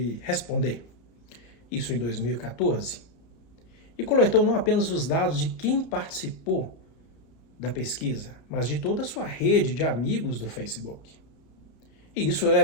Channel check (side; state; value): right; late; 31 ms